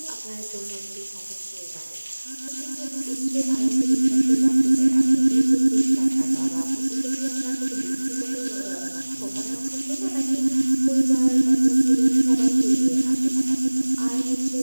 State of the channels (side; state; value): both; inverted; correlation -1.00